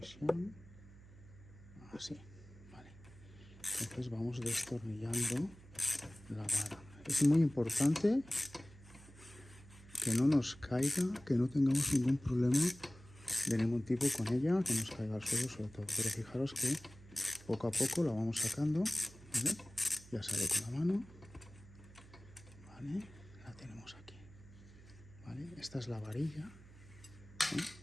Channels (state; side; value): noise; right; hum, 20 dB below the sound